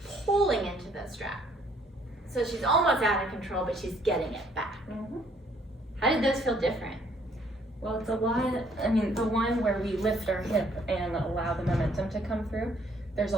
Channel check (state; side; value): normal; both; correlation 0.64